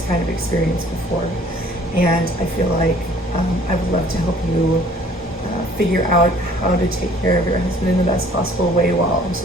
kind of experience before. And I feel like I would love to help you figure out how to take care of your husband in the best possible way while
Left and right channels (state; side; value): normal; both; correlation 0.55